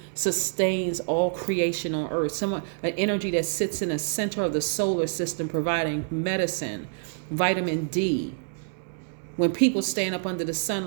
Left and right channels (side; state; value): left; silent; digital silence